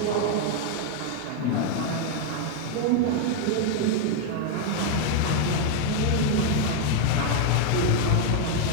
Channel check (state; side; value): different; both; correlation 0.00